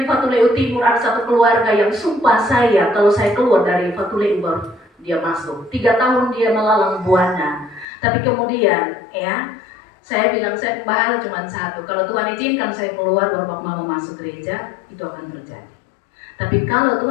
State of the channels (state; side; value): drops out; right; at 7.9 s